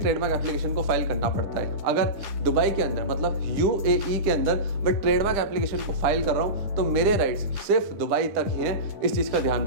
एप्लीकेशन को फाइल करना पड़ता है। अगर दुबई के अंदर मतलब यूएई के अंदर मैं ट्रेडमार्क एप्लीकेशन को फाइल कर रहा हूं तो मेरे राइट्स सिर्फ दुबई तक ही हैं, इस चीज का ध्यान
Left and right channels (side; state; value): left; late; 9.9 ms